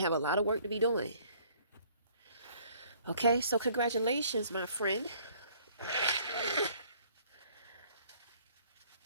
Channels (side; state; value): both; inverted; correlation -0.59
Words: a lot of work to be doing. Okay, so congratulations, my friend.